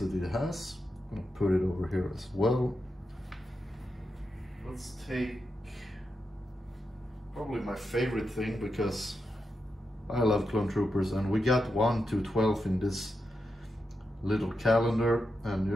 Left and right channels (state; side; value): normal; both; correlation 0.87